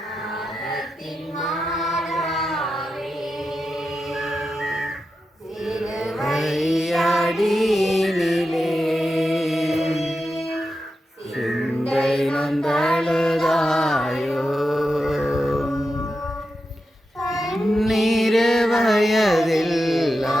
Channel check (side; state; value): both; normal; correlation 0.89